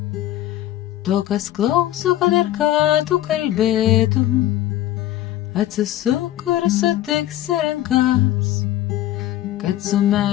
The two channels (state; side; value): quieter; right; 14.0 dB